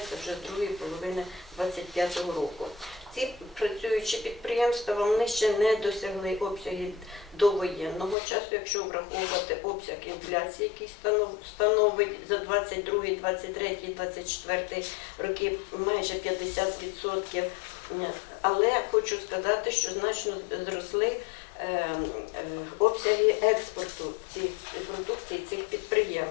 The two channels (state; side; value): drops out; right; at 8.2 s